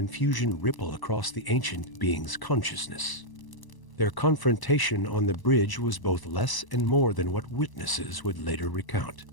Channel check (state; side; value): late; right; 1.0 ms